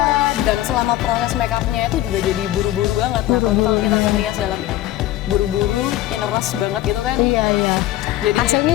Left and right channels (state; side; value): quieter; right; 14.9 dB